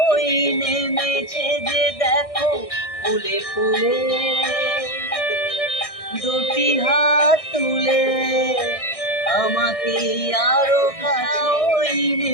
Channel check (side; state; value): right; late; 1.6 ms